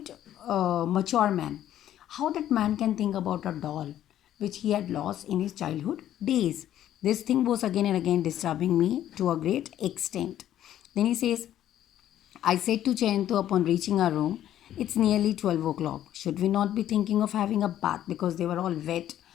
a mature man. How that man can think about a doll which he had lost in his childhood days? This thing was again and again disturbing me to a great extent. Then he says, I said to Jayanto upon reaching our room, it's nearly 12 o'clock. Should we not be thinking of having a bath? Because they were all wet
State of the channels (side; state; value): right; quieter; 11.8 dB